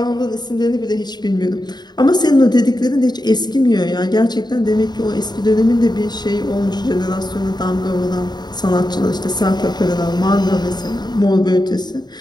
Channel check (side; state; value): right; late; 0.20 ms